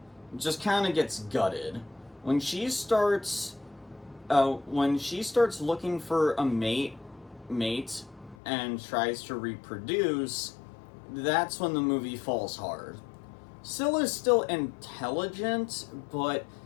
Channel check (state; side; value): drops out; right; at 8.3 s